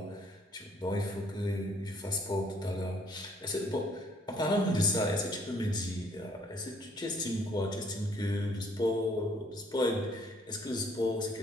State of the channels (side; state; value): both; normal; correlation 0.64